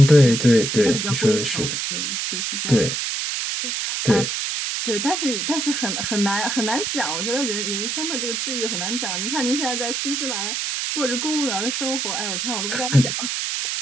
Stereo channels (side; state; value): right; noise; hiss, 1 dB below the sound